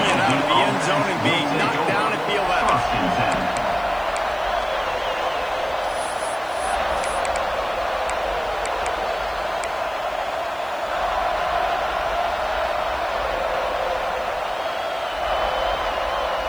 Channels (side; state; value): left; noise; hiss, 26 dB below the sound